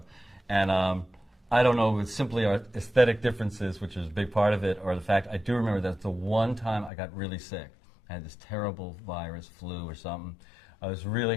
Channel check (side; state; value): right; drops out; at 6.9 s